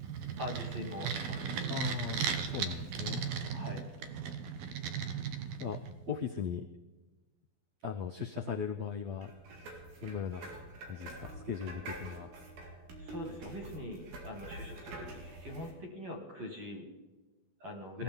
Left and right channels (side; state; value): left; late; 12 ms